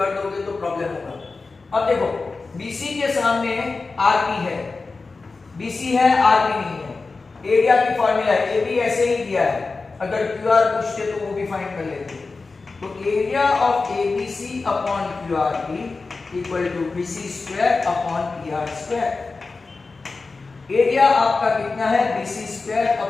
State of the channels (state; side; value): quieter; right; 4.0 dB